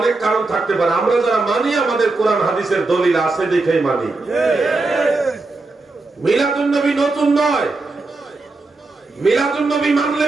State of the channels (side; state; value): left; quieter; 3.4 dB